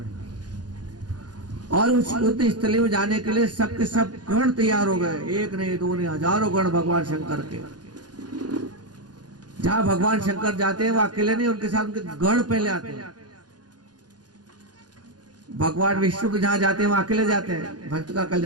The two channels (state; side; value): late; left; 0.69 ms